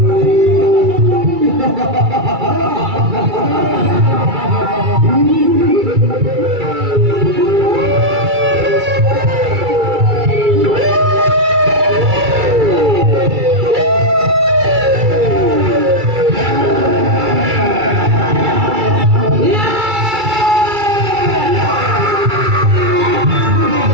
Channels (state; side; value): late; left; 2.3 ms